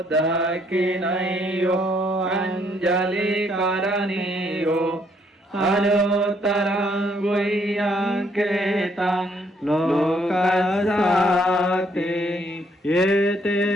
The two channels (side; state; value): both; normal; correlation 0.69